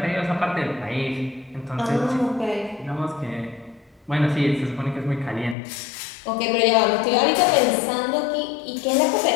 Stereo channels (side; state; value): right; drops out; at 5.6 s